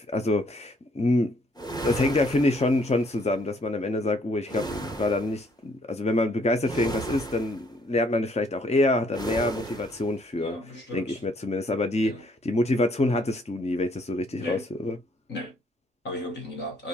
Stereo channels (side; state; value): both; normal; correlation 0.66